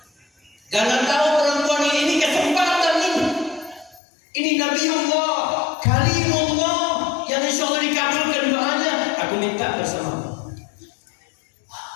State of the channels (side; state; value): right; drops out; at 4.0 s